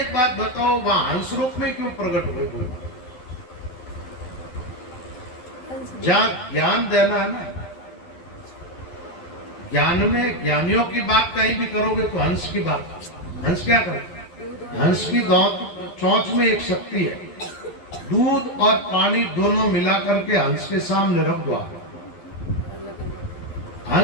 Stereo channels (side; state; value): right; late; 12 ms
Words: बात बताओ, वहां हंस रूप में क्यों प्रकट हुए? जहां ज्ञान देना है ना, ज्ञान में ज्ञानियों की बात कहीं भी करोगे तो हंस की बात। हंस क्या करे? हंस की चोंच में एक शक्ति है, दूध और पानी दोनों मिला करके हंस के सामने रख दो।